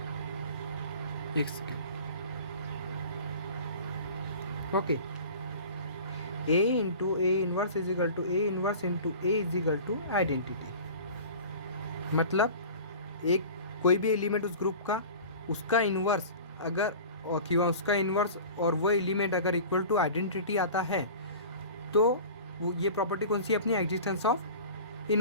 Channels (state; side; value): inverted; both; correlation -0.39